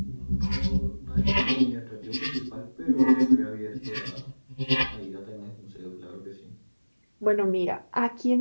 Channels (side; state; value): both; inverted; correlation -1.00